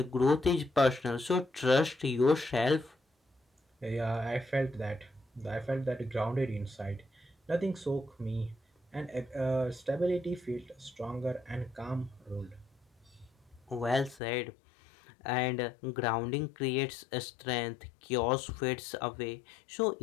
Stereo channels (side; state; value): right; drops out; at 14.2 s